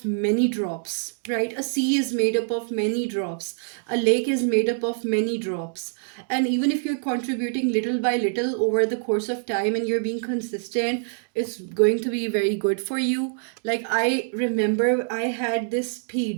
many drops, right? A sea is made up of many drops. A lake is made up of many drops. And even if you're contributing little by little over the course of time and you're being consistent, it's going to be very good for you. Like I remember I had this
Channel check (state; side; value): silent; left; digital silence